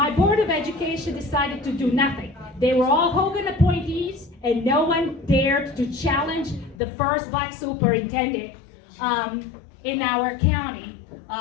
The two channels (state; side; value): drops out; right; at 6.8 s